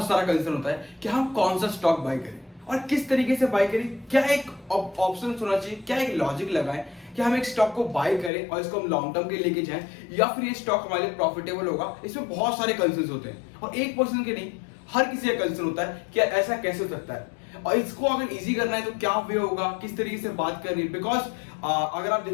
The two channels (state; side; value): drops out; right; at 8.3 s